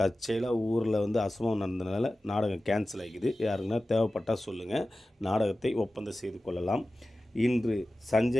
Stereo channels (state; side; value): normal; both; correlation 0.95